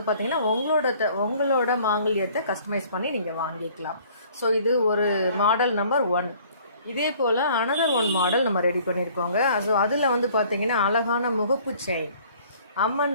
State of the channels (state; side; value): inverted; both; correlation -0.55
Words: பார்த்திங்கன்னா உங்களோட மாங்கல்யத்தை கஸ்டமைஸ் பண்ணி நீங்கள் வாங்கிக்கலாம். ஸோ இது ஒரு மாடல் நம்பர் 1. இதே போல் அனதர் 1 மாடல் நம்ம ரெடி பண்ணியிருக்கோங்க. ஸோ அதில் வந்து பார்த்திங்கன்னா அழகான முகப்பு செயின், அம்மன்